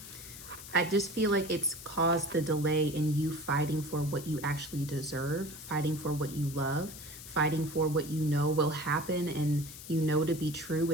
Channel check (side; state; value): left; noise; hiss, 14 dB below the sound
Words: I just feel like it's caused the delay in you fighting for what you actually deserve, fighting for what you love, fighting for what you know will happen and you know to be true